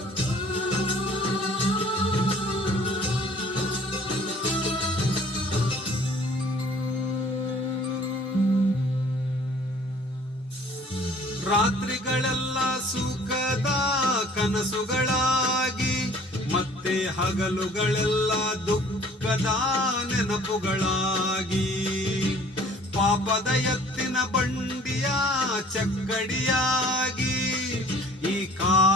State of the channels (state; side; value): normal; both; correlation 0.53